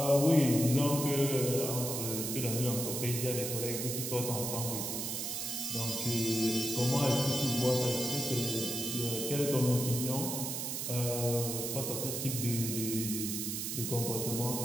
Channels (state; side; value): noise; right; hiss, 3 dB below the sound